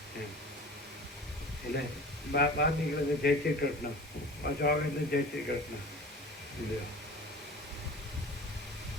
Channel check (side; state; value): both; normal; correlation 0.39